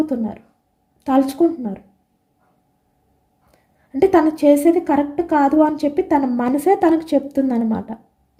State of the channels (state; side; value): identical; both; correlation 1.00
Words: తలుచుకుంటున్నారు. అంటే తను చేసేది కరెక్ట్ కాదు అని చెప్పి తన మనసే తనకు చెప్తుందనమాట.